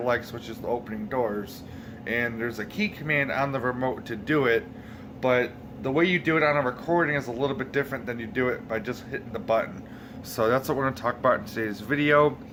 which is the opening doors. And there's a key command on the remote to do it, but the way you do it on a recording is a little bit different than you do it by just hitting the button. So that's what we're going to talk about in today's video.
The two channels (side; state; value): both; identical; correlation 1.00